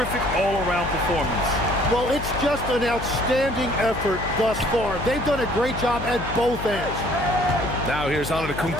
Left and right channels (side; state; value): left; noise; hum, 8 dB below the sound